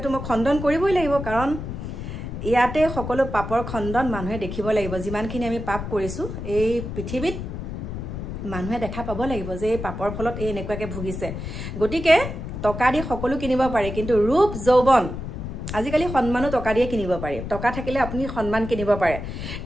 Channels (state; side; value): noise; left; rumble, 7 dB below the sound